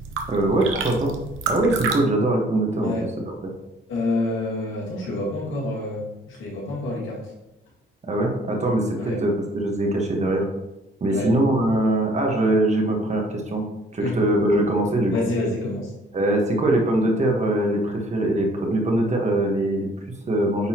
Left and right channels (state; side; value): normal; both; correlation 0.58